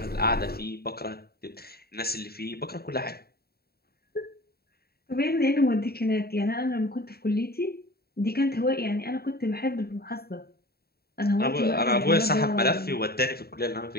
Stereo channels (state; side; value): late; right; 0.45 ms